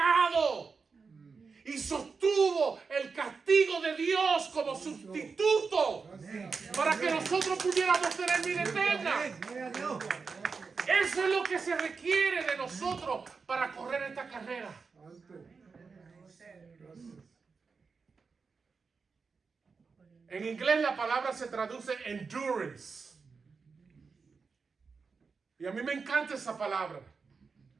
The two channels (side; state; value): left; quieter; 4.9 dB